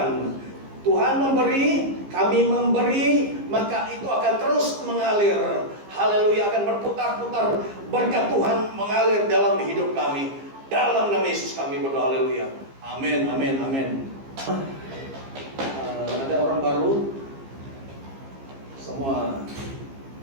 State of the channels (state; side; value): late; left; 15 ms